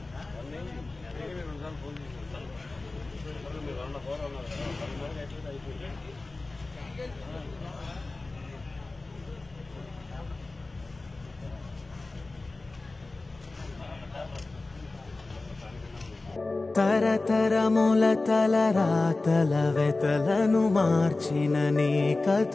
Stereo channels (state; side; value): quieter; right; 3.3 dB